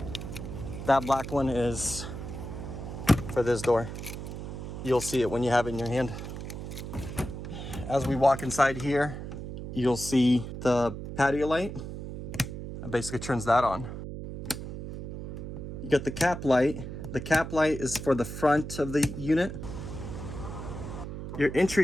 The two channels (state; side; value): noise; right; hum, 8 dB below the sound